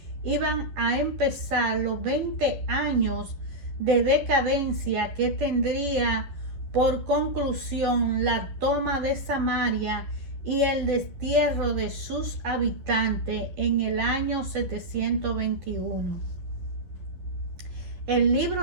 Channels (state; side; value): late; left; 11 ms